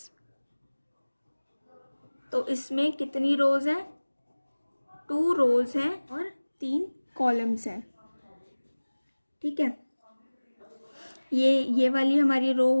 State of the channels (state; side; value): inverted; both; correlation -1.00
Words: तो इसमें कितनी रोज हैं, 2 रोज हैं और 3 कॉलम्स हैं। ठीक है, ये वाली हमारी रो